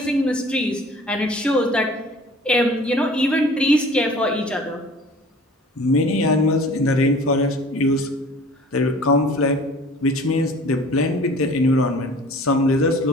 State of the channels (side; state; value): both; normal; correlation 0.47